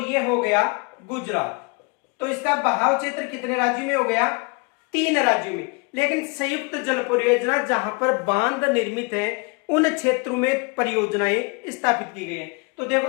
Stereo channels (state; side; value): quieter; right; 31.4 dB